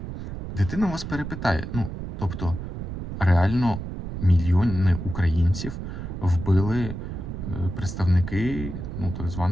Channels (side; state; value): right; noise; rumble, 7 dB below the sound